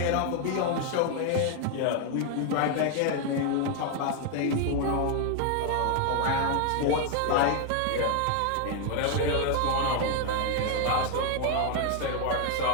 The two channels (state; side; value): different; both; correlation 0.01